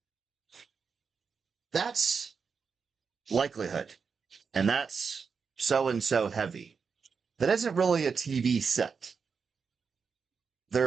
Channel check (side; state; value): left; quieter; 5.6 dB